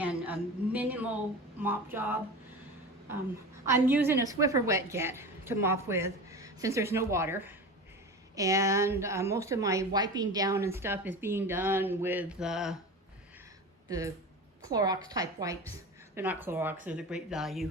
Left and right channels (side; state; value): both; normal; correlation 0.30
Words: a minimal mop job. I'm using a Swiffer wet jet to mop with since there's no water. And most of my wiping down and stuff is being done with the Clorox type wipes. They're not Clorox, they're the Great Value